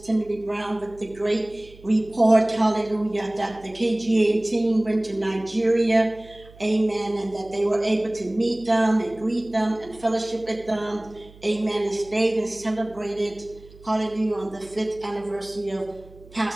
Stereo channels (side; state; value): right; noise; hum, 22 dB below the sound